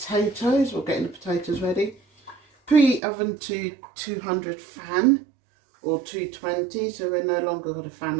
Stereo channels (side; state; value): left; drops out; at 3.0 s